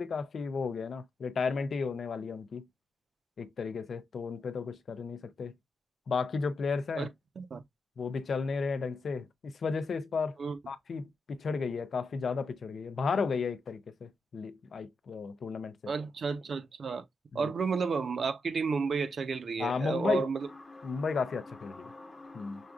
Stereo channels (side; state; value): both; normal; correlation 0.84